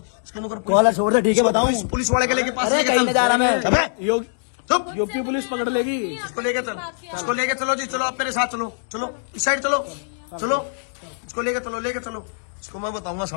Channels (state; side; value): silent; right; digital silence